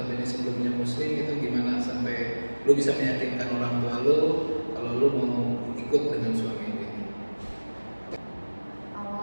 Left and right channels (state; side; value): inverted; both; correlation -1.00